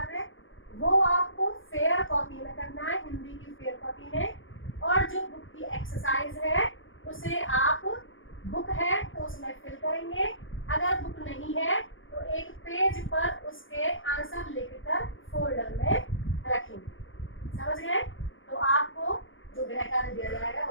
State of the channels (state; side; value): late; right; 0.58 ms